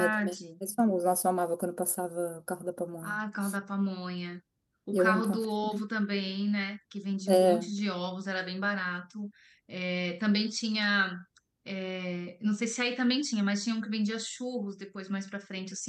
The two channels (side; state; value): both; identical; correlation 1.00